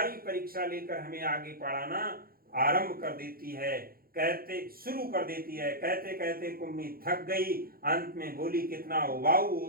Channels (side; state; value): left; late; 0.43 ms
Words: परीक्षा लेकर हमें आगे पढ़ाना आरंभ कर देती है, शुरू कर देती है। कहते कहते कुम्मी थक गई, अंत में बोली, कितना उबाऊ